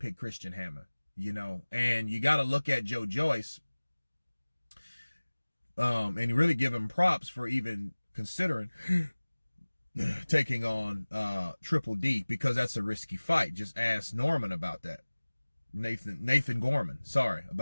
Christian Hammer, and you got to look at Joyce, and really give him props for even considering taking on Triple D, because that's a risky fight. Just ask Norman about that. Nathan Gorman, sorry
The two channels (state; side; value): inverted; both; correlation -1.00